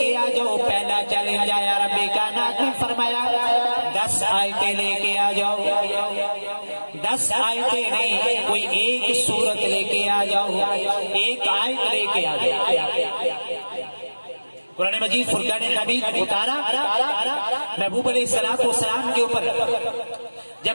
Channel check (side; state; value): both; inverted; correlation -1.00